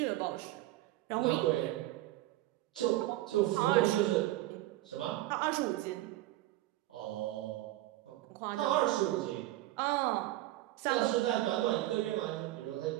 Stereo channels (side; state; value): left; quieter; 16.1 dB